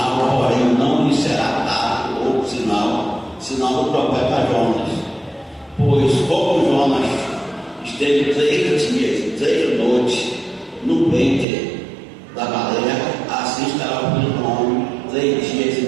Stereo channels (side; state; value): left; drops out; at 11.5 s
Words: porém não lhe será dado outro sinal do profeta Jonas. Pois como Jonas esteve 3 dias e 3 noites no ventre da baleia, assim estará o Filho do Homem 3 dias